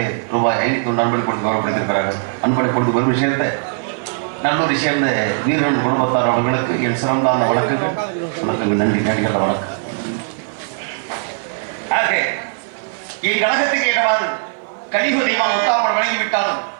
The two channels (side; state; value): left; silent; 55 dB below the other